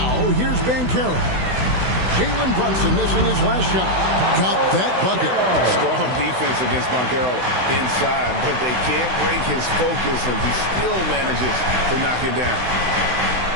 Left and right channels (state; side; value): late; left; 16 ms